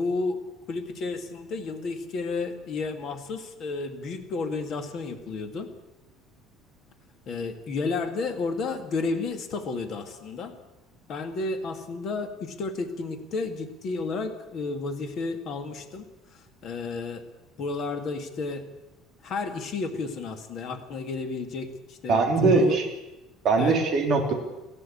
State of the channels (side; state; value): both; normal; correlation 0.53